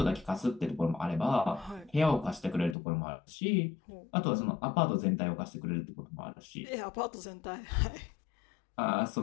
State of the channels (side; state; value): right; drops out; at 2.8 s